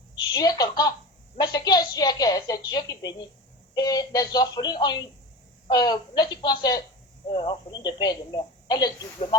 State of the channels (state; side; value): normal; both; correlation 0.30